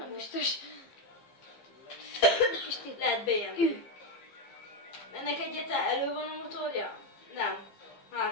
volt? biztos. Kis tip. Lehet BMW. Ennek egyáltalán elő van a motorja? Nem.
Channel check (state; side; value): late; right; 15 ms